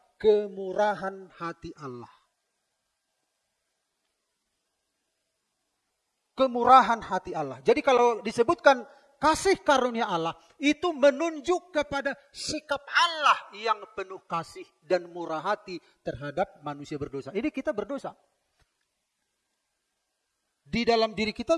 kemurahan hati Allah. Kemurahan hati Allah. Jadi kalau disebutkan kasih karunia Allah, itu menunjuk kepada sikap Allah yang penuh kasih dan murah hati terhadap manusia berdosa. Ini kita berdosa. Di dalam diri kita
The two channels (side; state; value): both; identical; correlation 1.00